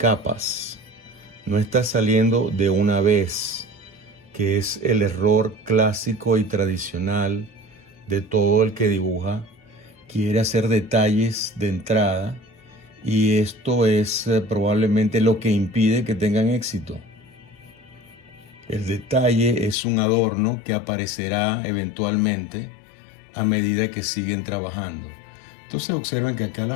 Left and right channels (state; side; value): drops out; right; at 19.8 s